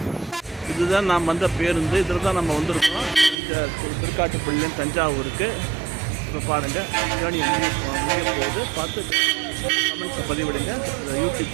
இதுதான் நாம் வந்த பேருந்து. இதில் தான் நம்ம வந்திருக்கோம். இந்த திருக்காட்டுப்பள்ளியிலேருந்து தஞ்சாவூருக்கு. இப்போ பாருங்கள் ஜேர்னி முடிய போகுது. பார்த்து கமெண்ட்ஸை பதிவிடுங்க. YouTube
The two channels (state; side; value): drops out; left; at 3.4 s